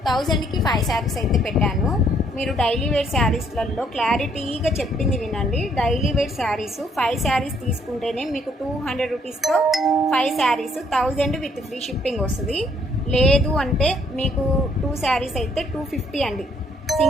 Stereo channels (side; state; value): both; normal; correlation 0.67